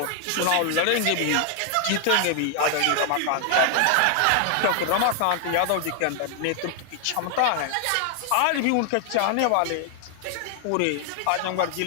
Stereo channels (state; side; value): different; both; correlation 0.00